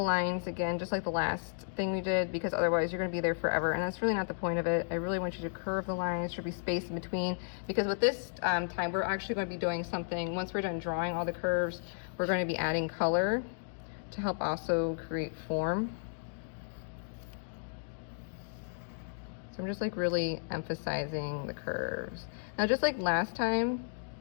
lines again, just like the last thing we did, because otherwise you're going to be there forever, and that's really not the point of it. I really want you to curve the lines. There should be space in between, because with this time we're actually going to be doing something. Once we're done drawing all the curves, we're going to be adding color to help also create form. So I'm just like really emphasizing the curves. Now, just like last time,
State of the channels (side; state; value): right; silent; digital silence